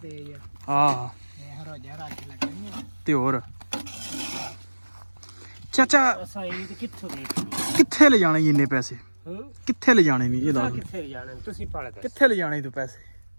ਹੈ। ਹਾਂ ਇਹ ਰੋਜ਼ਾ ਰੱਖ ਲੱਗਣੀ ਤੇ ਹੋਰ ਚਾਚਾ ਅਸਾਂ ਇਹ ਕਿੱਥੋਂ ਦੇ ਕਿੱਥੇ ਲੈ ਜਾਣੇ ਇੰਨੇ ਪੈਸੇ? ਕਿੱਥੇ ਲੈ ਜਾਣੇ ਨਹੀਂ ਇਹ ਦੱਸ। ਕਿੱਥੇ ਜਾਣੇ ਤੁਸੀਂ ਪੜ ਗਏ ਕਿੱਥੇ ਲੈ ਜਾਣੇ ਤੂੰ ਪੈਸੇ?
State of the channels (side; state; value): both; inverted; correlation -1.00